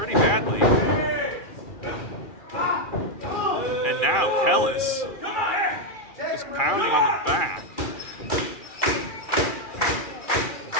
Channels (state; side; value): late; right; 2.4 ms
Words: And now Kellis is pounding on the back.